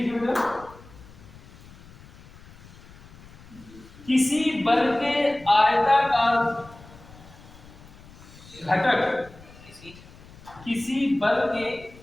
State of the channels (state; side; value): noise; left; rumble, 21 dB below the sound